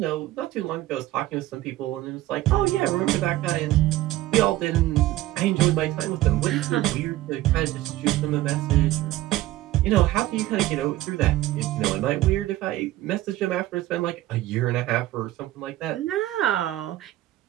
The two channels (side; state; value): left; quieter; 15.6 dB